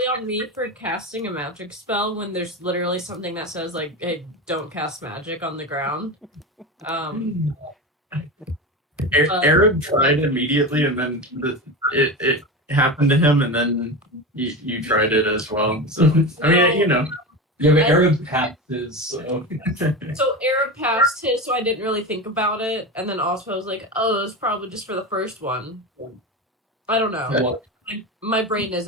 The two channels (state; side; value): normal; both; correlation 0.23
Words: on me for casting a magic spell when there's literally something that says like, "Hey, don't cast magic on the ground." Arab tried immediately, and then it happened to him, and then you tried it as well. So I mean, you know. Yeah, but Arab passes, so. So Arab passed his, so I didn't really think about it, and then also I was like, "Oh, it's probably just for the first one." I don't know. What? Like, my brain